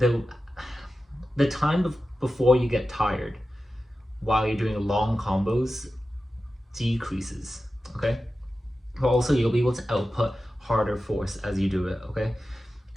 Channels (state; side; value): normal; both; correlation 0.93